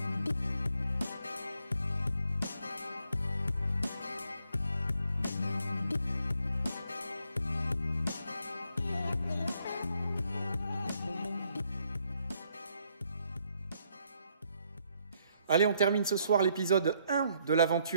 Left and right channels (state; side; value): inverted; both; correlation -0.71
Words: Allez, on termine ce soir l'épisode 1 de la